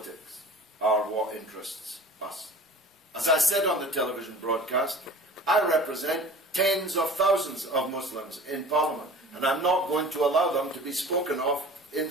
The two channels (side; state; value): both; normal; correlation 0.42